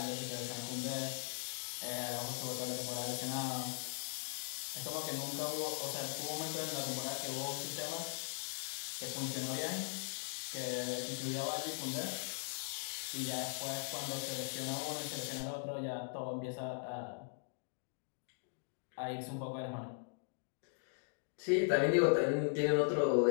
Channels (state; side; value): silent; right; digital silence